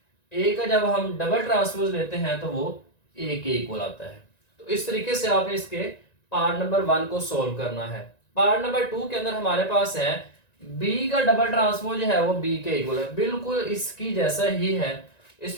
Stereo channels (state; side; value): late; right; 1.9 ms